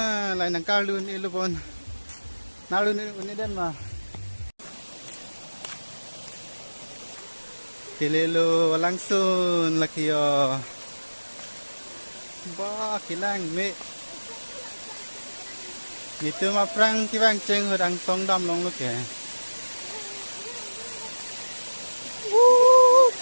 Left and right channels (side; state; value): both; inverted; correlation -1.00